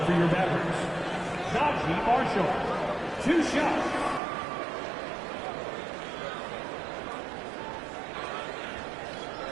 for your Mavericks, Najee Marshall. 2 shots.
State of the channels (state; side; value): drops out; left; at 4.2 s